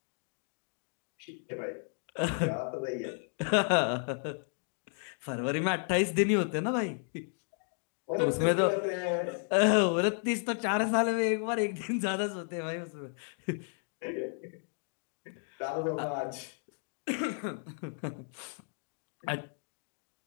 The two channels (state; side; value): silent; right; 56 dB below the other